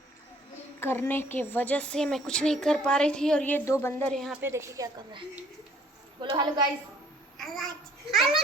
करने के वजह से मैं कुछ नहीं कर पा रही थी। और ये दो बंदर यहाँ पे देखिए क्या कर रहे हैं। बोलो हेलो गाइस। हेलो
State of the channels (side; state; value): both; normal; correlation 0.59